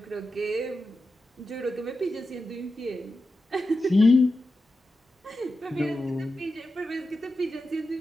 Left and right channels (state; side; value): normal; both; correlation 0.91